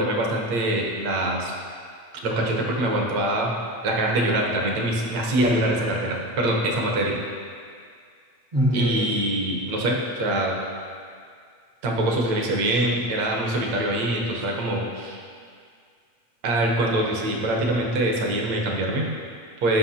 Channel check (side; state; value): left; late; 8.7 ms